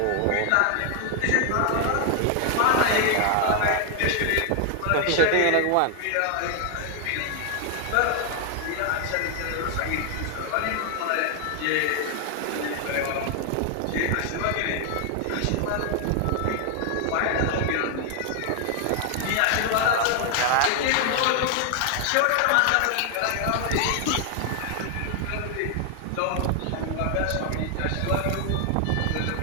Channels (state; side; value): different; both; correlation 0.00